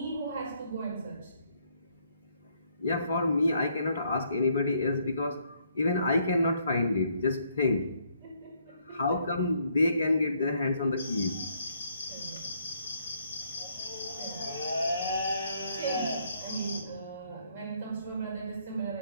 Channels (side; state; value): both; inverted; correlation -0.70